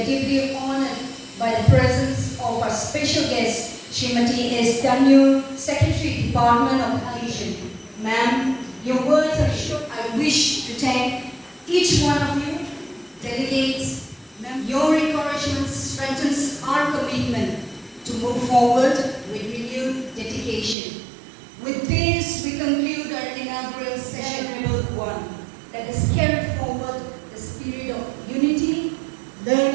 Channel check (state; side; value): drops out; left; at 20.8 s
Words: deeply honored by the presence of our special guest, Srimati S. Tainiu, Secretary, Department of Education. Ma'am, your words are short. I wish to thank each one of you, delegates. Your encouragement strengthens our commitment to move forward with renewed dedication. With this, we conclude our inaugural session number 1. Let us carry forward the spirit of unity,